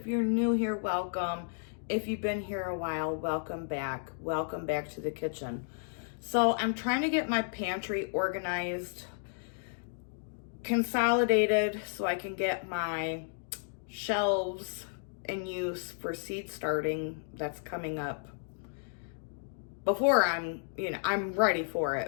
you're new here, welcome. If you've been here a while, welcome back. Welcome back to the kitchen. So I'm trying to get my pantry organized, consolidated, so I can get my shelves in use for seed starting that's coming up before I'm ready for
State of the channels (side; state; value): right; silent; digital silence